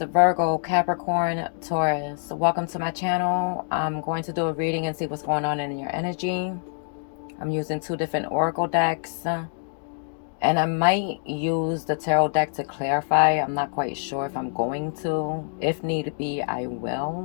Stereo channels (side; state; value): right; silent; digital silence